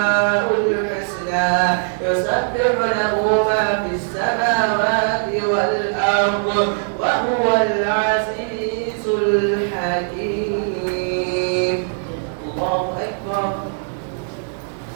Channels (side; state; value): left; silent; digital silence